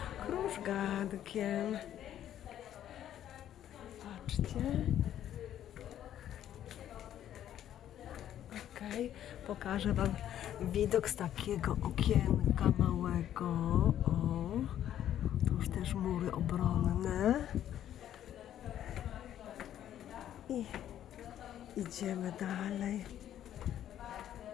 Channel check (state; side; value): quieter; right; 11.1 dB